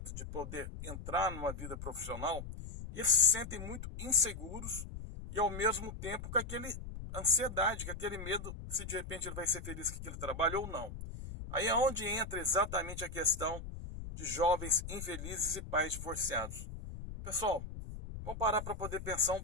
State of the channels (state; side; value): noise; left; rumble, 9 dB below the sound